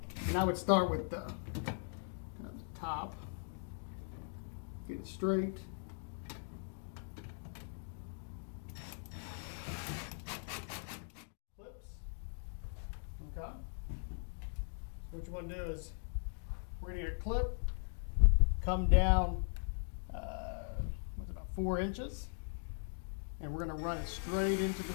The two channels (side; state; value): right; silent; digital silence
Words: And I would start with the top. Get it straight. Clips. Okay. So what you want to do is we're going to get a clip, come down, what's it, about 4 inches, and we're going to run it straight into the